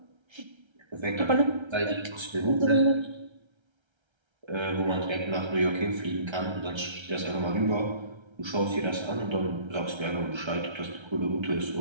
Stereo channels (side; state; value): left; late; 1.3 ms